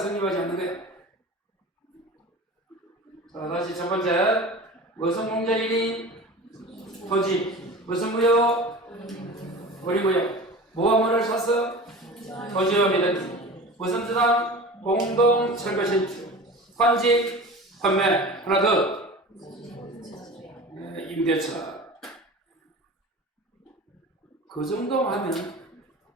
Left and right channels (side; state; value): both; normal; correlation 0.36